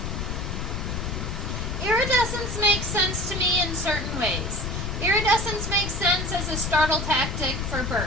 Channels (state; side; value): noise; left; rumble, 3 dB below the sound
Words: Iridescence makes sense to me in certain ways. Iridescence makes sense as a startle tactic for